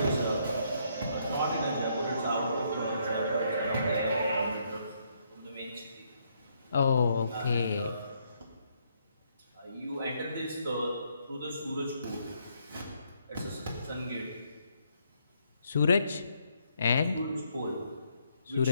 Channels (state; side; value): inverted; both; correlation -0.73